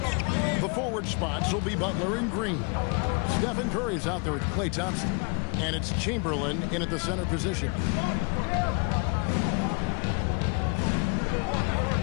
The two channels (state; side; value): quieter; right; 35.4 dB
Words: The forward spots will be Butler and Green. Stephen Curry is out there with Klay Thompson. And it's Chamberlain in at the center position.